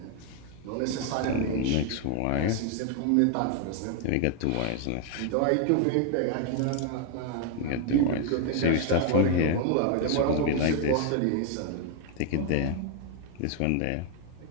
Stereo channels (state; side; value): different; both; correlation 0.01